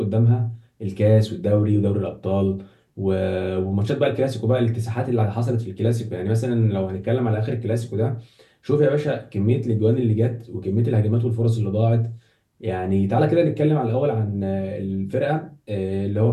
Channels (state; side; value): identical; both; correlation 1.00